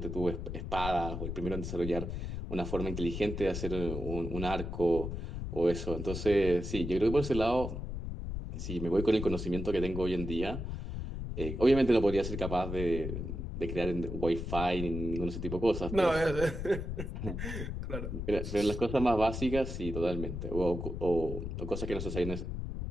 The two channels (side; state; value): left; noise; rumble, 5 dB below the sound